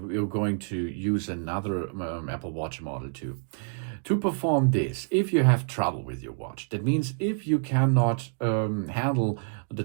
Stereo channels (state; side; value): silent; left; digital silence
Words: going to use another Apple Watch Model 2. To perform this, if you have trouble with your watch, that means if you cannot handle the